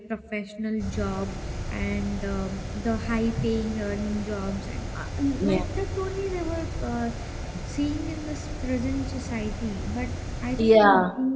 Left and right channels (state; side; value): identical; both; correlation 1.00